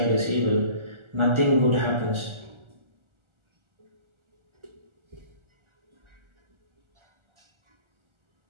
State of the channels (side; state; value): left; late; 1.4 ms